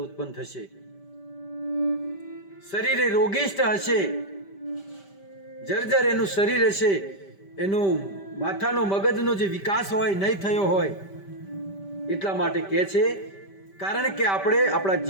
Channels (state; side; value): late; right; 5.1 ms